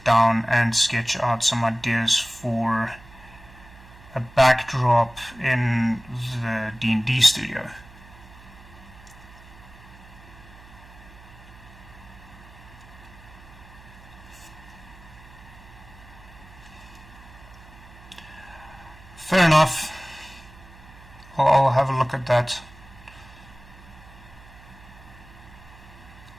down and sketch out some ideas for a backdrop in the D&D studio. Fair enough. I'll have a look at that.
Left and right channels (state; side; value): noise; right; hum, 21 dB below the sound